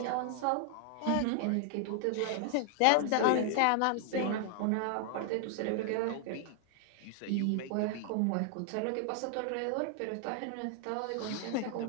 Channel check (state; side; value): different; both; correlation 0.00